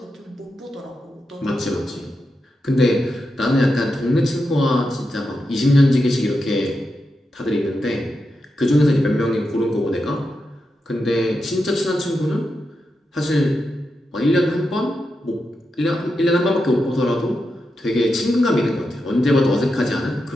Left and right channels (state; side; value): normal; both; correlation 0.87